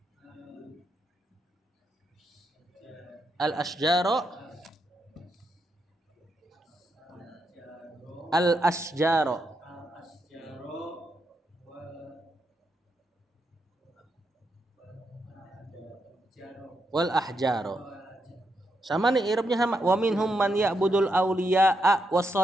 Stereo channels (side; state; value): both; normal; correlation 0.82